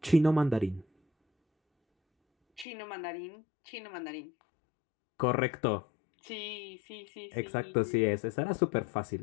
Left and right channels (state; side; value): drops out; right; at 2.7 s